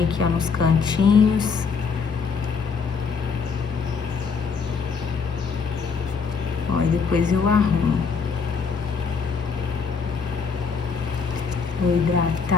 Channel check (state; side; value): quieter; right; 5.5 dB